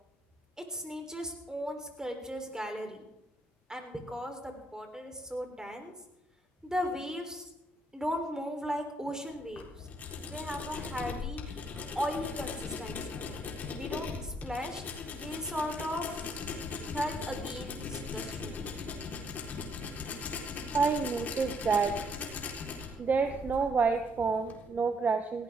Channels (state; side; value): normal; both; correlation 0.70